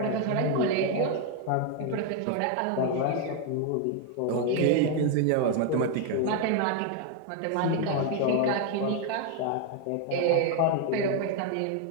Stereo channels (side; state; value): both; different; correlation 0.01